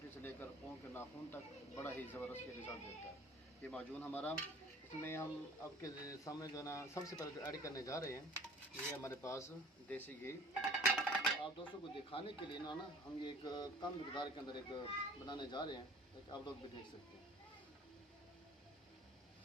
से लेकर पाँव के नाखून तक बड़ा ही ज़बरदस्त ये रिज़ल्ट देता है ये माजून हमारा। इसमें हम आपके सामने जो है ना सबसे पहले जो ऐड करने जा रहे हैं, ये हमारे पास देसी घी। आप दोस्तों को दिखाने के लिए ना हम ये एक कम मकदार के अंदर एक बनाने जा रहे हैं, एक आप लोग भी देख सकते हैं।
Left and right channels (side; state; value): both; normal; correlation 0.48